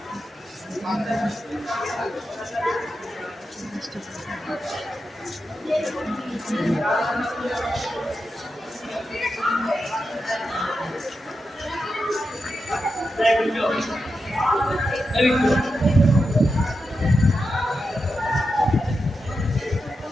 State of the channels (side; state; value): both; normal; correlation 0.88